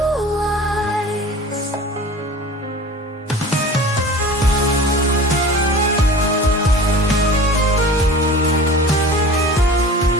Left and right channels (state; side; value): normal; both; correlation 0.39